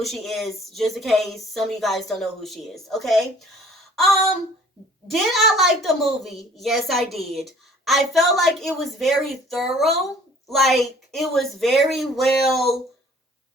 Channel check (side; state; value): both; normal; correlation 0.54